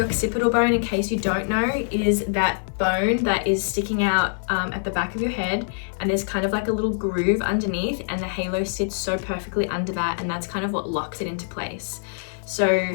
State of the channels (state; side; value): silent; right; digital silence